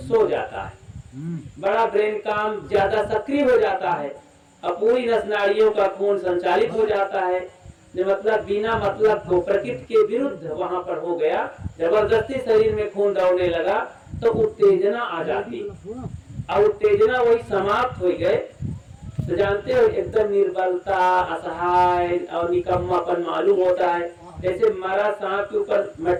जाता है, बड़ा ब्रेन काम ज्यादा सक्रिय हो जाता है और पूरी नस नाड़ियों का खून संचालित हो जाता है। मतलब बिना मतलब को प्रकृति के विरुद्ध वहां पर हो गया, जबरदस्ती शरीर में खून दौड़ने लगा तो उत्तेजना आ जाती और उत्तेजना वही समाप्त हो गए तो जानते हो एकदम निर्बलता, असहाय और निकम्मापन मालूम होता है। जैसे मरा सांप के ऊपर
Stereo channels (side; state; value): both; identical; correlation 1.00